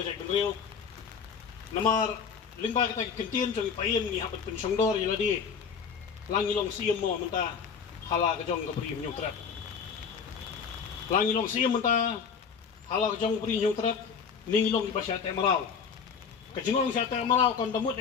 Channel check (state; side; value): quieter; right; 6.3 dB